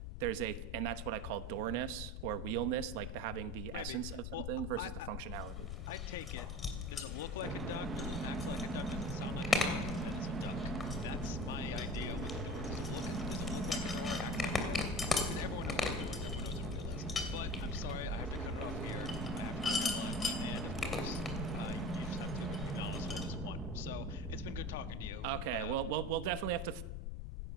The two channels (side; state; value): left; noise; rumble, 5 dB below the sound